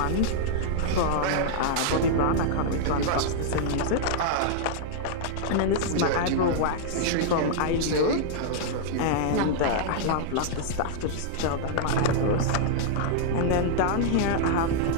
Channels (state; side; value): different; both; correlation -0.01